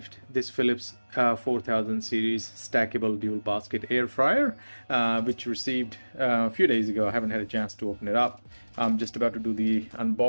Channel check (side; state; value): both; inverted; correlation -1.00